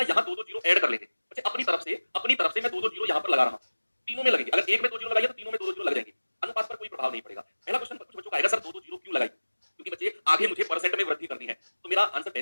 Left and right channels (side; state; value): both; inverted; correlation -1.00